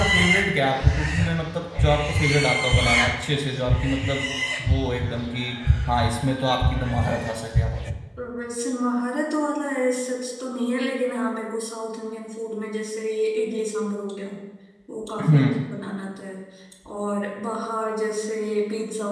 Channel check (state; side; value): identical; both; correlation 1.00